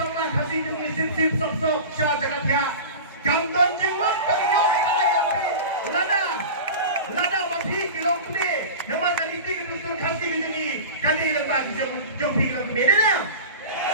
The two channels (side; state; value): both; inverted; correlation -0.32